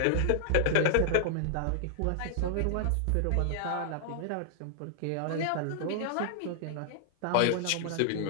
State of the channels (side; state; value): both; different; correlation -0.01